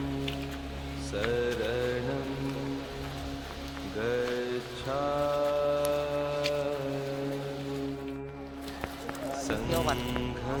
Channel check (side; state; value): both; identical; correlation 1.00